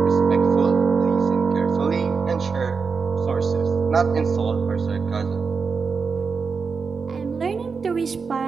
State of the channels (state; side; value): quieter; left; 5.2 dB